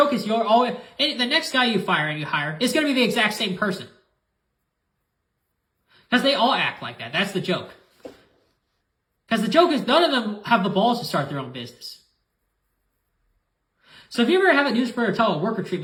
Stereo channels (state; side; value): identical; both; correlation 1.00